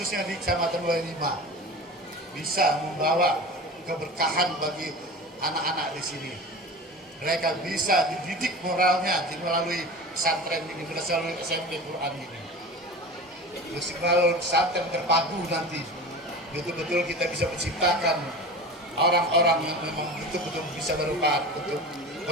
di Kecamatan 25, bisa membawa keberkahan bagi anak-anak di sini. Mereka bisa dididik moralnya melalui pesantren ini, melalui SMP Quran ini. Terus melalui pesantren terpadu nanti, betul-betul kita bisa menciptakan orang-orang yang memang betul-betul bisa bermanfaat untuk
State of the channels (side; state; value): both; normal; correlation 0.33